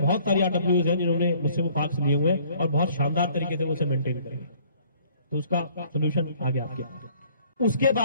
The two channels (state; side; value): inverted; both; correlation -0.58